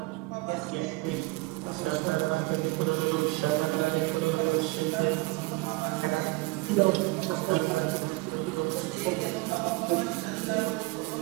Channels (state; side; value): quieter; left; 23.7 dB